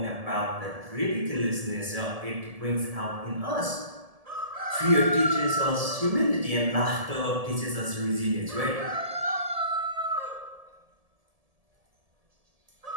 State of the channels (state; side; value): late; left; 1.7 ms